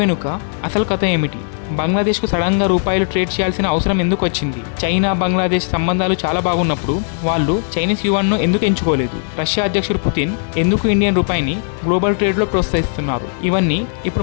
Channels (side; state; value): right; silent; 68 dB below the other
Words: వెనుక అసలు కథ ఏమిటి? బంగ్లాదేశ్కు సడన్గా రూపాయలు ట్రేడ్ చేయాల్సిన అవసరం ఎందుకు వచ్చింది? చైనా బంగ్లాదేశ్ సంబంధాలు చాలా బాగున్నప్పుడు వాళ్ళు చైనీస్ యువాన్ను ఎందుకు ఎంచుకోలేదు? రష్యా అధ్యక్షుడు పుతిన్ ఎందుకు ఇండియన్ రూపాయిని గ్లోబల్ ట్రేడ్లో ప్రోత్సహిస్తున్నారు? ఇవన్నీ